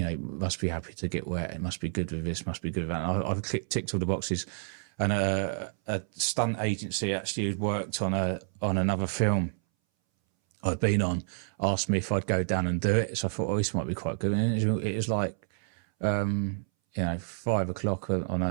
know, must be happy to get wet. It must be good with this, must be good with that. And I've ticked all the boxes. And a stunt agency actually who'd worked on another film I'd been on asked me if I'd go down and do it. So I thought, oh, this might be quite good. And it was like, you know, 5 o'clock on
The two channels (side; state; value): left; silent; 58 dB below the other